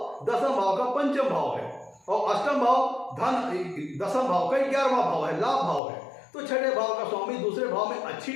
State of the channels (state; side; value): drops out; right; at 5.8 s